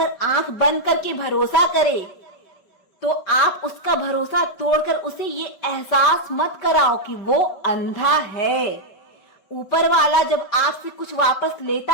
आंख बंद करके भरोसा करे तो आप उसका भरोसा तोड़कर उसे ये एहसास मत कराओ कि वो अंधा है। ऊपर वाला जब आपसे कुछ वापस लेता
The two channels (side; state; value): right; late; 5.3 ms